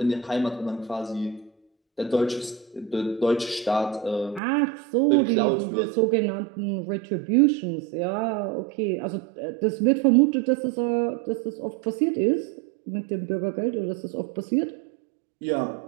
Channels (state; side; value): drops out; left; at 4.4 s